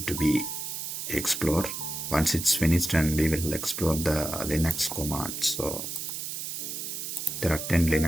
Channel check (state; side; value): noise; right; hiss, 5 dB below the sound